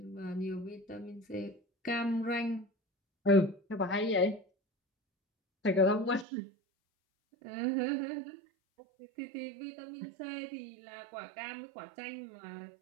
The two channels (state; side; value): drops out; left; at 6.2 s